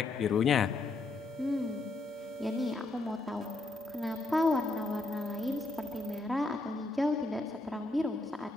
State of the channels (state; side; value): quieter; right; 3.2 dB